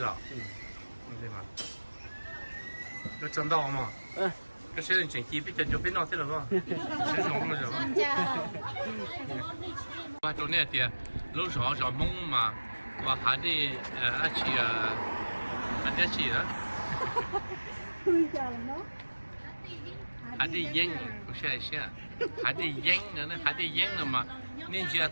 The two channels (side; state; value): both; inverted; correlation -1.00